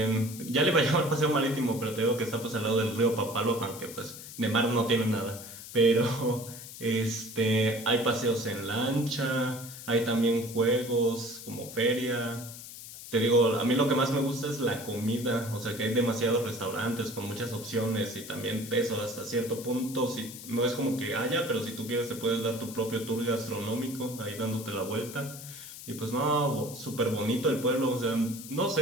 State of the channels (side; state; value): left; noise; hiss, 13 dB below the sound